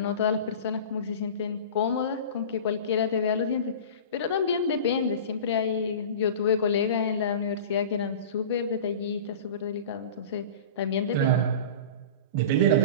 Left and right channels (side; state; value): both; inverted; correlation -0.34